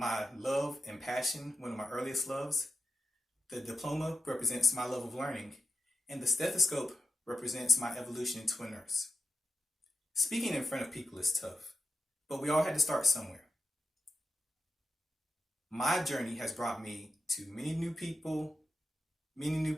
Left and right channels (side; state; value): both; normal; correlation 0.88